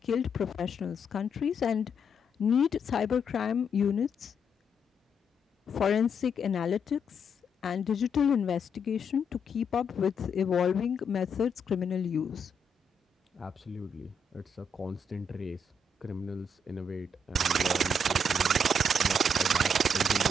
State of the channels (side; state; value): both; normal; correlation 0.76